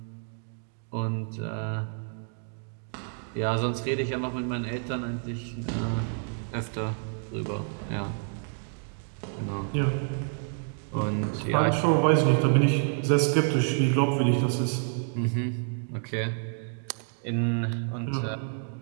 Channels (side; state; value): left; silent; 57 dB below the other